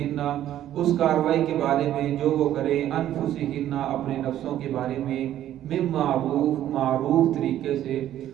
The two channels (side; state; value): left; quieter; 12.1 dB